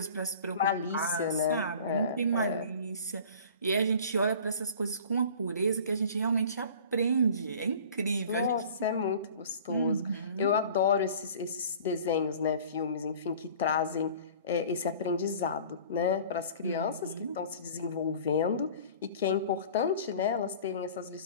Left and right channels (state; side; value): inverted; both; correlation -0.45